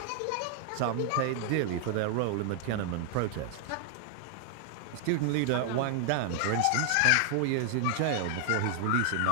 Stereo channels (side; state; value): both; different; correlation 0.00